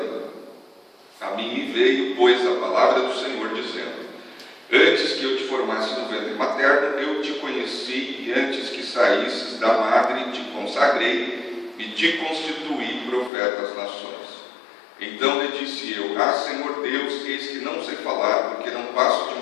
A mim me veio, pois, a palavra do Senhor, dizendo: antes que eu te formasse no ventre materno, eu te conheci, e antes que saísses da madre, te consagrei e te constituí profeta às nações. Então lhe disse eu: ah, Senhor Deus, eis que não sei falar, porque não passo de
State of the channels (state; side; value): drops out; right; at 13.3 s